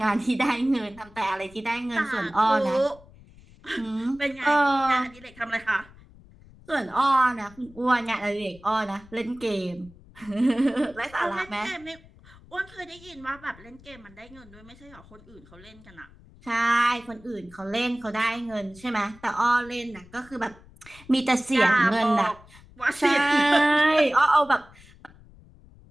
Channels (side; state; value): left; noise; rumble, 23 dB below the sound